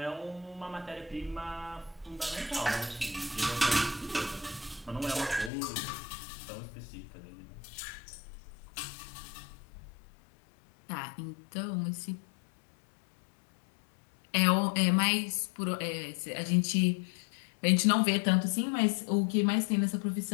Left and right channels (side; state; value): right; drops out; at 5.5 s